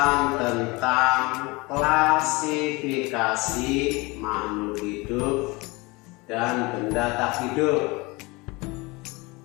tentang klasifikasi makhluk hidup dan benda tak hidup.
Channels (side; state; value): right; quieter; 24.8 dB